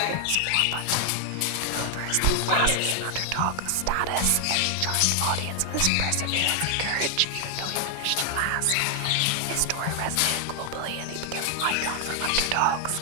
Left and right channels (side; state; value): both; different; correlation 0.00